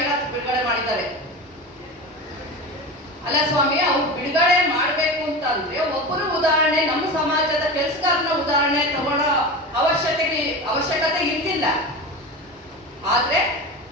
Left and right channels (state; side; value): normal; both; correlation 0.27